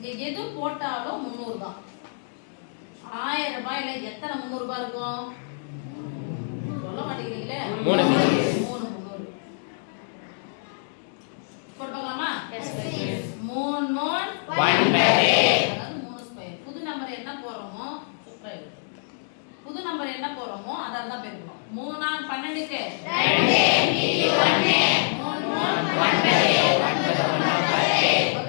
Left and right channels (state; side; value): silent; right; digital silence